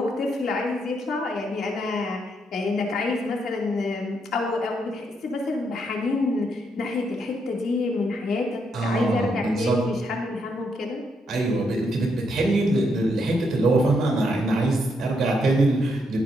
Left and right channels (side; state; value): both; normal; correlation 0.77